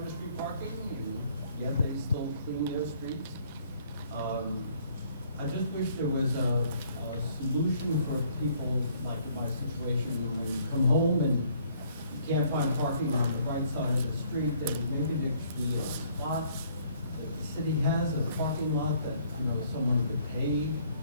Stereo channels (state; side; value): inverted; both; correlation -0.62